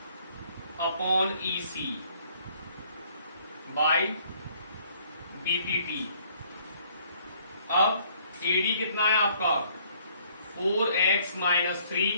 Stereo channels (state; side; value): inverted; both; correlation -0.62